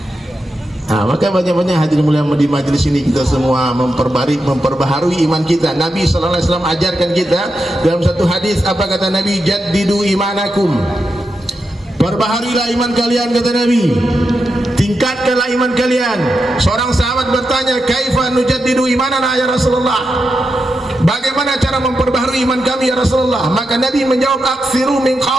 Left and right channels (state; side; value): normal; both; correlation 0.87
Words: Nah, maka banyak-banyak hadirin mulia di majelis ini kita semua memperbaharui iman kita. Nabi SAW ajarkan kita dalam satu hadis, apa kata Nabi? Jaddidu imanakum, perbaharilah iman kalian, kata Nabi, tingkatkanlah iman kalian. Seorang sahabat bertanya, kaifa nujaddidu imanana ya Rasulullah, bagaimana cara memperbaharui iman kami ya Rasulullah? Maka Nabi menjawab, aksiru min